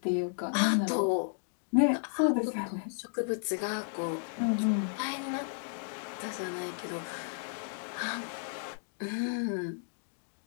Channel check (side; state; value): right; silent; digital silence